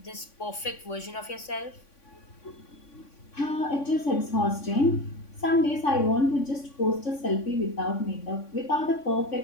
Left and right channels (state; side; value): late; right; 3.5 ms